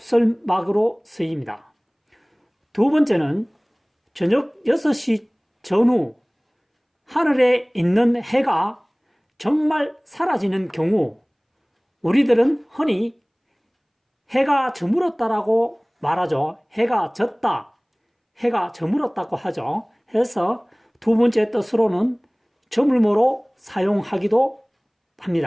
쓰입니다. 두 번째는 저녁 6시 전후 하늘에 있는 해가 정말 사라지는 경우 우리들은 흔히 해가 저물었다라고 말하죠. 해가 졌다, 해가 저물었다고 하죠. 그래서 두 번째 뜻으로는 저물모로 사용하기도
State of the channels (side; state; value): both; identical; correlation 1.00